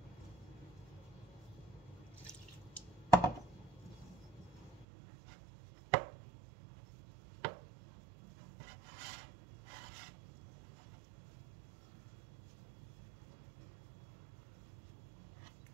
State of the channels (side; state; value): left; drops out; at 4.9 s